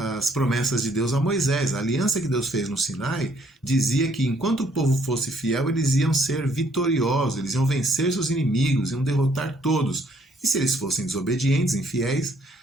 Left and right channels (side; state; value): both; normal; correlation 0.66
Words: promessas de Deus a Moisés. A aliança que Deus fez no Sinai dizia que enquanto o povo fosse fiel, eles iam ser vitoriosos, eles iam vencer seus inimigos, iam derrotar todos. E se eles fossem desobedientes, infiéis,